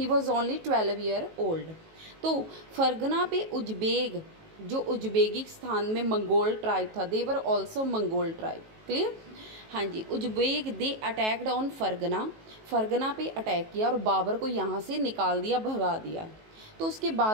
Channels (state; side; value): late; left; 19 ms